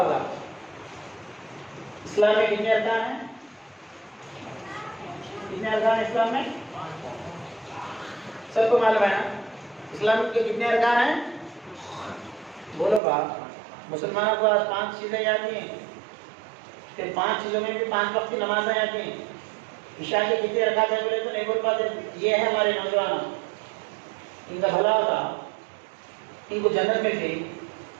اسلام میں کتنے ارکان ہیں؟ کتنے ارکان ہیں اسلام میں؟ سب کو معلوم ہے نا اسلام کے کتنے ارکان ہیں؟ بولو باپ. مسلمانوں کو آج 5 چیزیں یاد ہیں، پھر 5 چیزوں میں بھی 5 وقت کی نمازیں یاد ہیں. عشاء کے کتنے رکعت ہیں بولے تو نہیں بول پاتے. یہ ہے ہمارے نوجوان، ان کا بھلا ہوتا، ان کو جنت ملتی،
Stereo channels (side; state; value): left; drops out; at 13.0 s